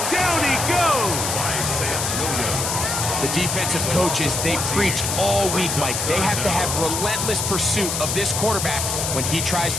down he goes. The defensive coaches, they preached all week, Mike. They have to have relentless pursuit of this quarterback when he tries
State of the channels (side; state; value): left; noise; hiss, 1 dB below the sound